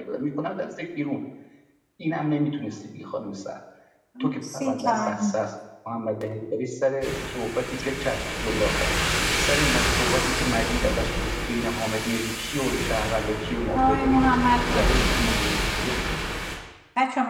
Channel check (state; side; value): identical; both; correlation 1.00